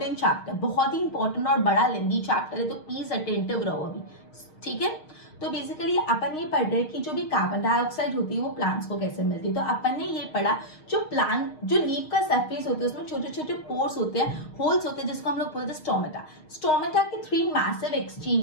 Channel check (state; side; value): late; right; 6.5 ms